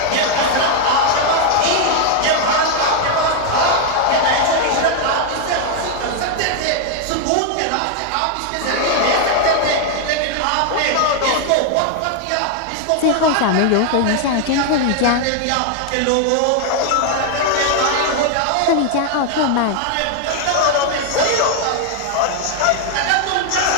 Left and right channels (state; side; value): different; both; correlation 0.00